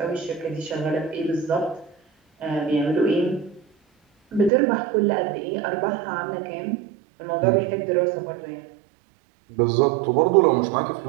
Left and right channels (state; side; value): drops out; left; at 4.5 s